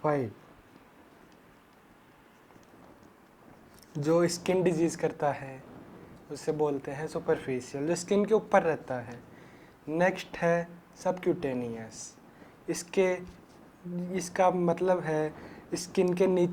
जो स्किन डिजीज करता है उसे बोलते हैं सुपरफिशियल, जो स्किन के ऊपर रहता है। नेक्स्ट है सबक्यूटेनियस। इसका मतलब है स्किन के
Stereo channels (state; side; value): identical; both; correlation 1.00